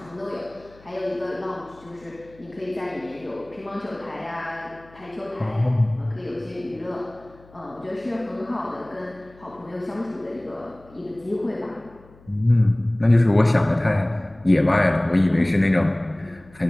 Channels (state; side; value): noise; left; hum, 25 dB below the sound